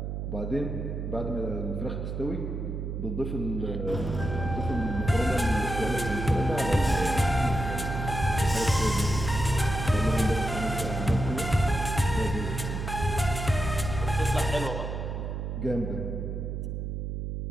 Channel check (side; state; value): right; noise; hum, 4 dB below the sound